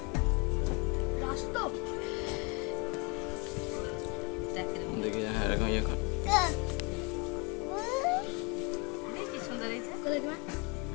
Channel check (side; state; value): right; quieter; 30.4 dB